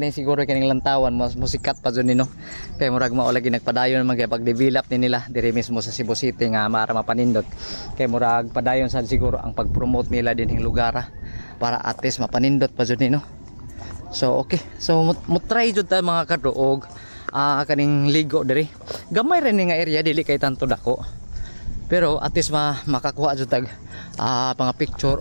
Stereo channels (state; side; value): inverted; both; correlation -1.00